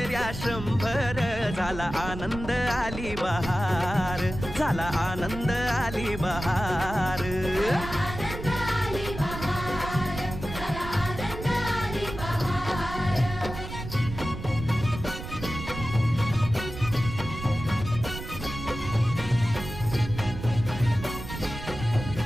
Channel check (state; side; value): noise; right; rumble, 9 dB below the sound